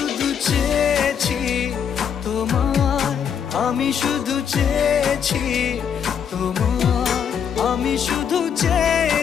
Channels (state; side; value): quieter; right; 7.8 dB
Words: চেয়েছি তোমায়, আমি শুধু চেয়েছি তোমায়, আমি শুধু